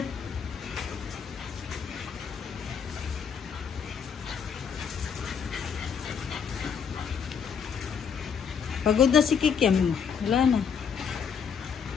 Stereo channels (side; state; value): right; quieter; 6.9 dB